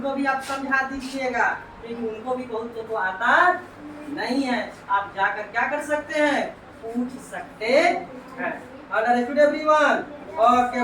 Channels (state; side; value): identical; both; correlation 1.00